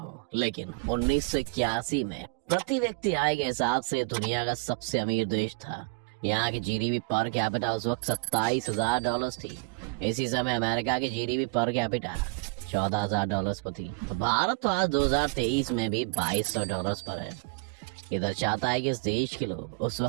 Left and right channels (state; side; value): quieter; left; 31.7 dB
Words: लेकिन 1981 में प्रति व्यक्ति आय के हिसाब से दुनिया का सबसे अमीर देश था। यहाँ की जीडीपी पर कैपिटा उस वक्त $27,000 थी। इसी समय अमेरिका की जीडीपी पर कैपिटा $14,000 पर थी। भारत तो आज 2023 में भी $2,200 पर है। ये दर्शाता है कि इस देश के लोग उस